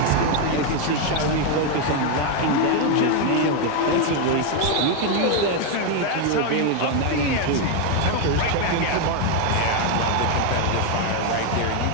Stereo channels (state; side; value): different; both; correlation 0.01